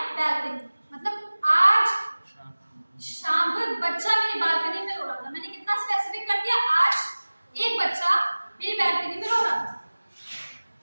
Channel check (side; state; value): both; inverted; correlation -1.00